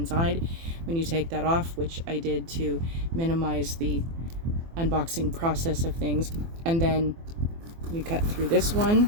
When you take that off, which I did to minimize the unboxing process of things, and then we cut through this one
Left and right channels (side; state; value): left; late; 24 ms